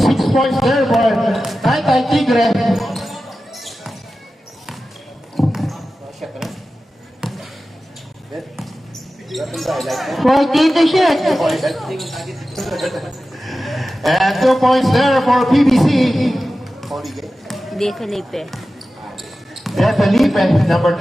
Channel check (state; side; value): normal; both; correlation 0.94